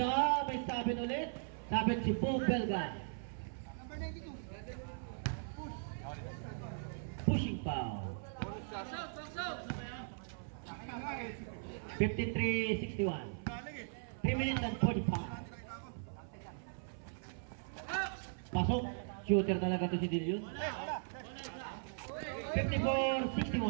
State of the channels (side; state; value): left; silent; 52 dB below the other